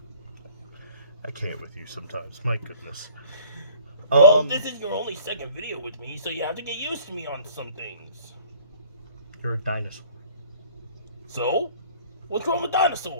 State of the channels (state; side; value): inverted; both; correlation -0.50